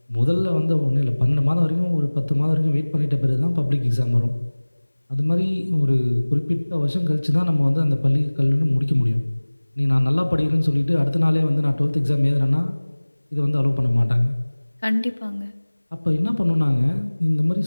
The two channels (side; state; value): both; inverted; correlation -1.00